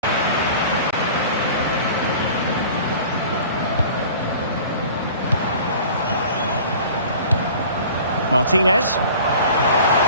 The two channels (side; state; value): both; inverted; correlation -0.44